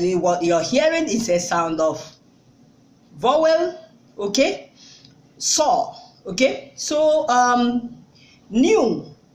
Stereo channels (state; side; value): identical; both; correlation 1.00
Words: what you're hearing is a sound of vowel. Okay, saw. Okay, so new.